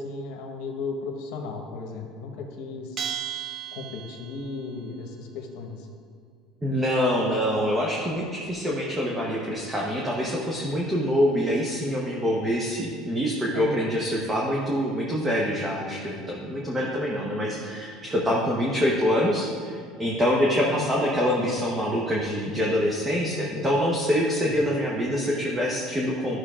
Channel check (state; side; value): normal; both; correlation 0.60